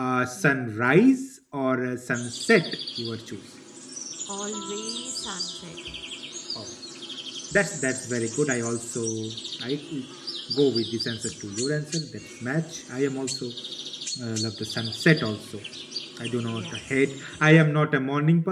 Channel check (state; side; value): identical; both; correlation 1.00